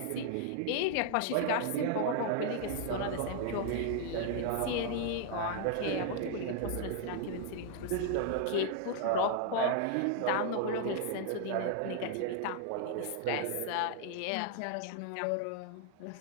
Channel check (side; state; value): both; different; correlation 0.00